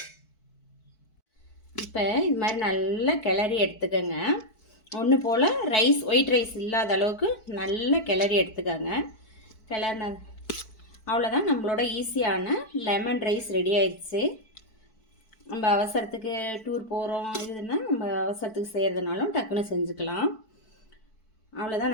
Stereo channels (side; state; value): right; late; 4.6 ms